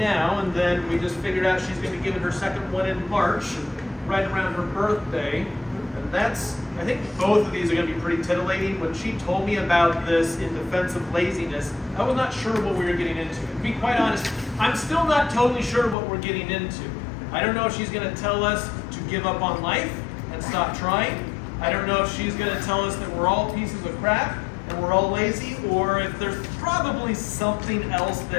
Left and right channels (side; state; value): right; drops out; at 16.0 s